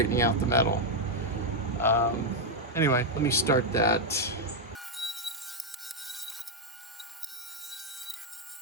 out the metal. Anyway, let me start that.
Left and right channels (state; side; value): normal; both; correlation 0.00